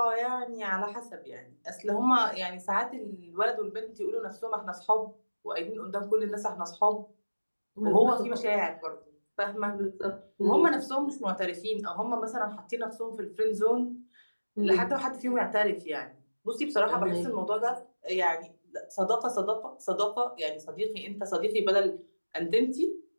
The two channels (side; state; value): both; inverted; correlation -1.00